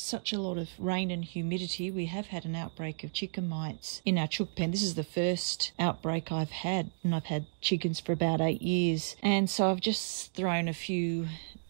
a lot of rain and humidity, we have had an outbreak of chicken mites in our chook pen. This is the first outbreak I've had, and I've had chickens for about 8 years. And so I've just thrown a few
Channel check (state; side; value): silent; left; digital silence